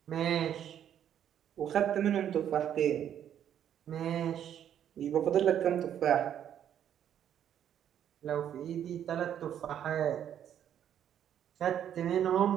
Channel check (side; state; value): left; quieter; 9.8 dB